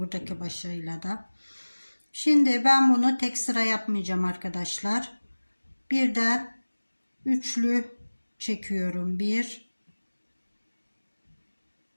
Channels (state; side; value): inverted; both; correlation -1.00